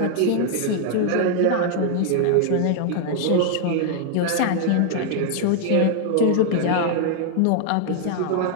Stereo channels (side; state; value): both; different; correlation 0.00